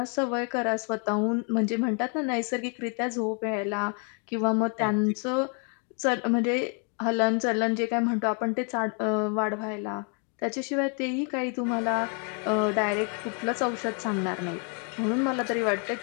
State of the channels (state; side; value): quieter; right; 39.3 dB